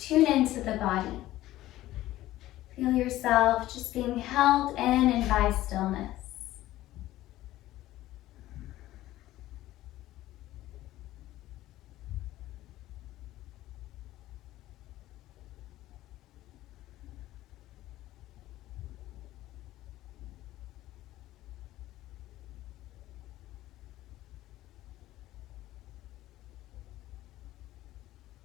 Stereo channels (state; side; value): quieter; right; 15.3 dB